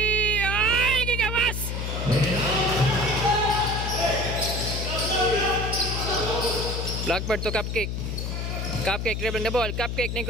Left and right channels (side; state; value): left; noise; hum, 3 dB below the sound